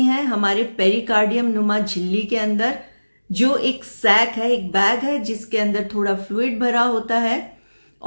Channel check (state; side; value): inverted; both; correlation -1.00